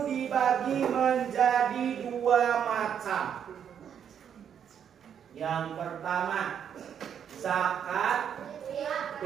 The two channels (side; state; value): left; quieter; 8.4 dB